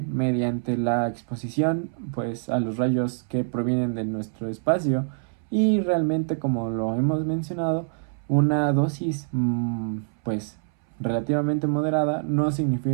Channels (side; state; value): left; silent; 61 dB below the other